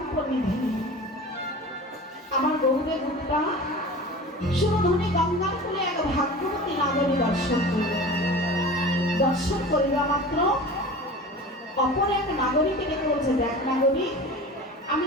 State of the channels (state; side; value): normal; both; correlation 0.36